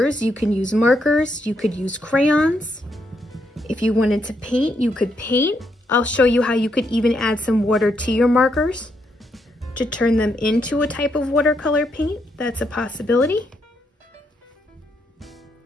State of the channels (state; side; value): normal; both; correlation 0.78